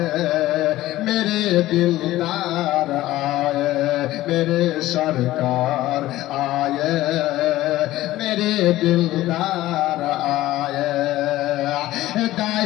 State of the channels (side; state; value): right; quieter; 15.9 dB